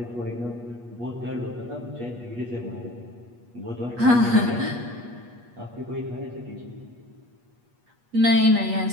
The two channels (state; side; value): late; left; 8.3 ms